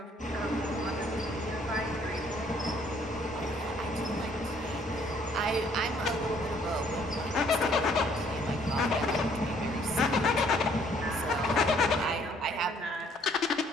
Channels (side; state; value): both; normal; correlation 0.63